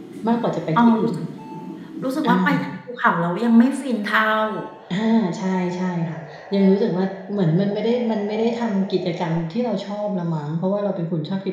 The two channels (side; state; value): both; identical; correlation 1.00